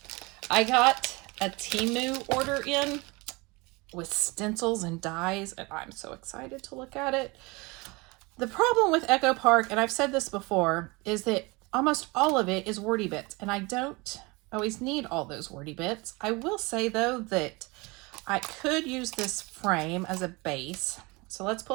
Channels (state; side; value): quieter; left; 25.4 dB